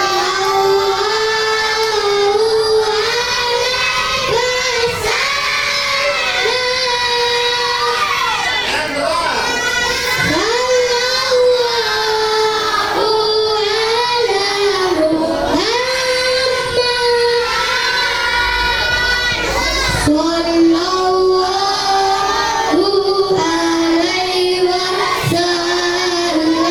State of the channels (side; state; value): right; noise; rumble, 19 dB below the sound